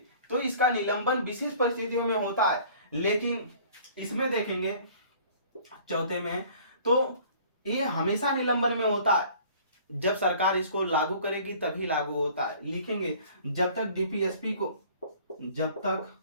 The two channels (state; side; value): inverted; both; correlation -0.51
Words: तो इसका निलंबन विशेष परिस्थितियों में होता है। लेकिन इसमें देखेंगे चौथे में, तो ये हमेशा निलंबन में होता है, जब सरकार इसको लागू करेगी तभी लागू होता है। लिखेंगे जब तक डीपीएसपी